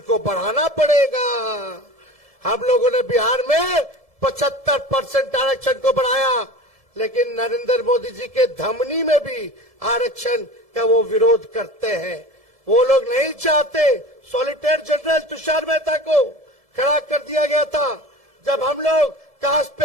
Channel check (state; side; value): late; left; 1.7 ms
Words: को बढ़ाना पड़ेगा। हम लोगों ने बिहार में 75% आरक्षण को बढ़ाया, लेकिन नरेंद्र मोदी जी के धमनी में भी आरक्षण का वो विरोध करते हैं। वो लोग नहीं चाहते। सॉलिसिटर जनरल तुषार मेहता को खड़ा कर दिया गया था जब हम लोग कास्ट